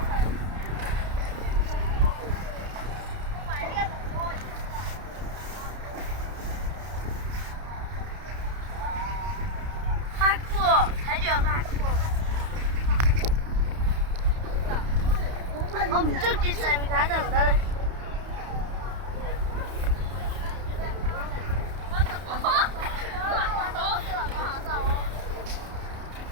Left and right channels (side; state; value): left; late; 31 ms